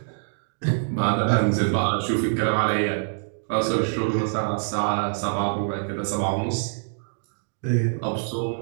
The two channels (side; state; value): left; silent; digital silence